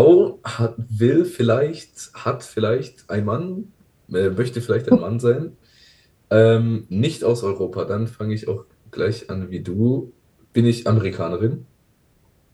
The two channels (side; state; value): both; identical; correlation 1.00